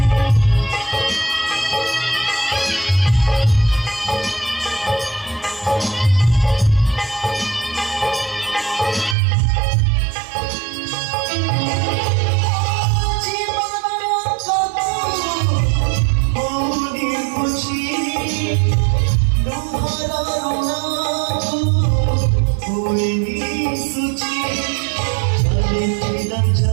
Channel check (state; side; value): drops out; left; at 9.2 s